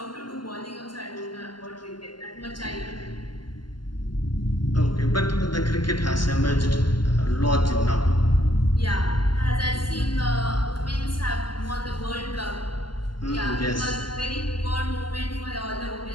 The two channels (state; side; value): late; right; 0.71 ms